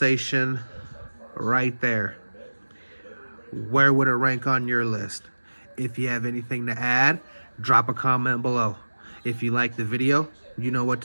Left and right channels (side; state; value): both; inverted; correlation -1.00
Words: right there. Where would it rank on your list? If you have anything to add, drop a comment below. If you like the video, you know what